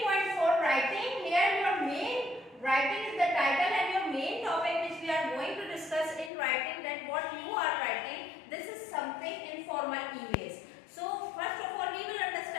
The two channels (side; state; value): right; drops out; at 6.3 s